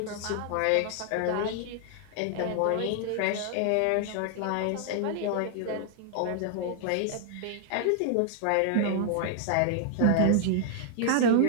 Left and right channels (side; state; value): both; different; correlation 0.00